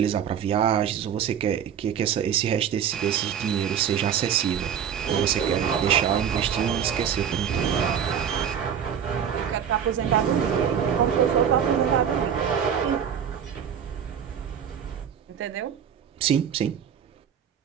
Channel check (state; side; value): quieter; left; 8.4 dB